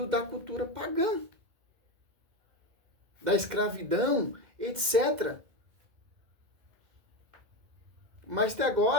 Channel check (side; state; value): left; late; 2.1 ms